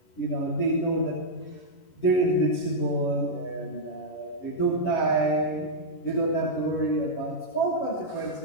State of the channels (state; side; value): late; right; 11 ms